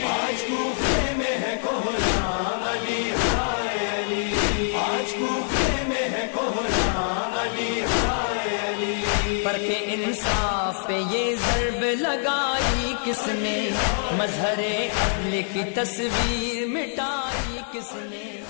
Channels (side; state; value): right; silent; digital silence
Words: آج کوفے میں ہے کوھرام علی ہائے علی آج کوفے میں ہے کوھرام علی ہائے علی فرق انصاف پہ یہ ضرب لگائی کس نے، مظہر عدل کی تصویر مٹائی کس نے،